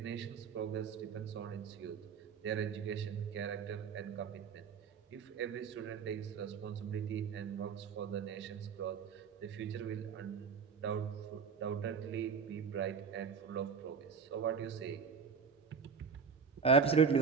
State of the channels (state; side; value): quieter; left; 5.9 dB